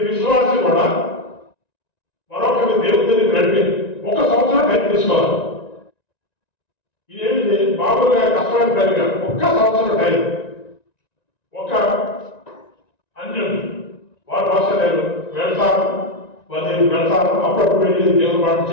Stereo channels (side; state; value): right; late; 1.9 ms